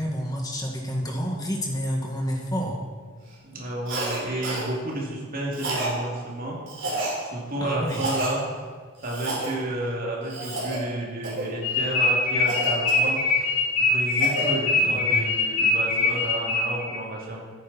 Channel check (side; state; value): both; normal; correlation 0.28